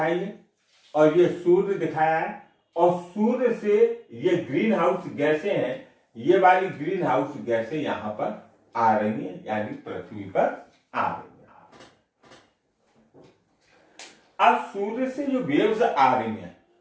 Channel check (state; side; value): identical; both; correlation 1.00